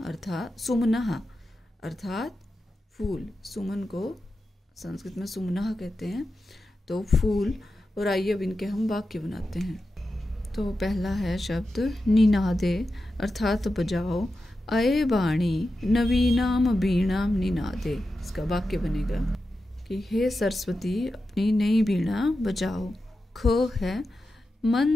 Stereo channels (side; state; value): both; normal; correlation 0.91